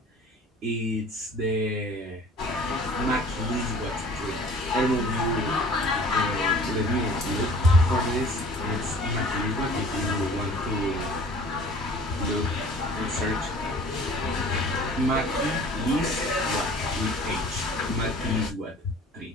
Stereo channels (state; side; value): normal; both; correlation 0.48